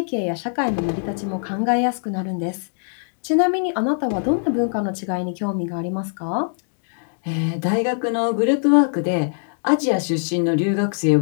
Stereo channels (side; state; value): right; silent; digital silence